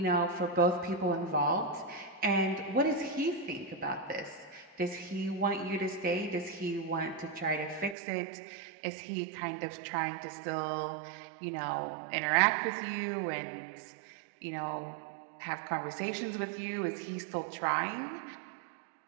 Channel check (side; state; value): left; drops out; at 8.0 s